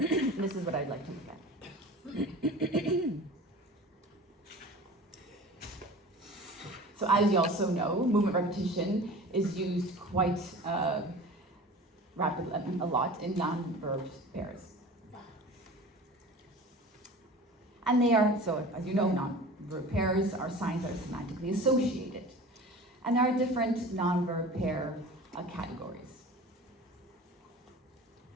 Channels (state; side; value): normal; both; correlation 0.38